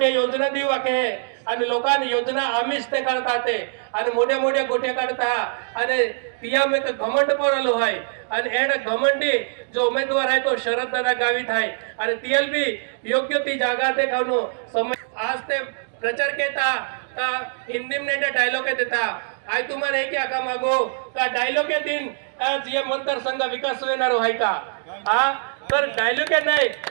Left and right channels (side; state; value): left; silent; 63 dB below the other